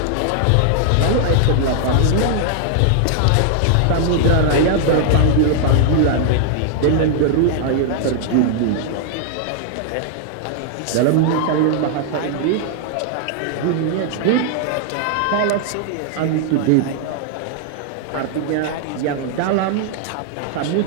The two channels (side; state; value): both; different; correlation -0.01